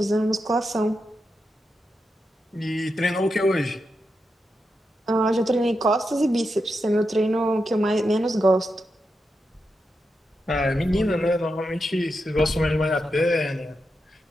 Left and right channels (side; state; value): both; normal; correlation 0.87